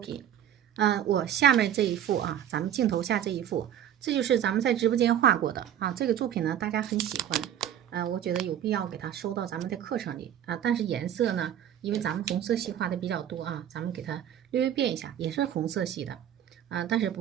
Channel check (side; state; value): left; quieter; 10.3 dB